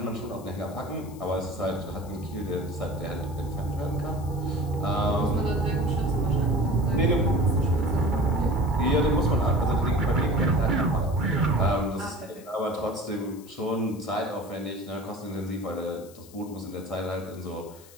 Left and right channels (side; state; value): left; noise; hiss, 22 dB below the sound